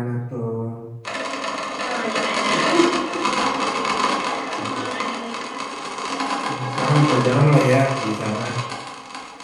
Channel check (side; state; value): both; identical; correlation 1.00